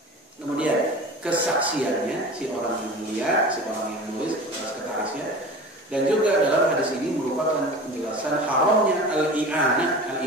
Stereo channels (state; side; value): normal; both; correlation 0.36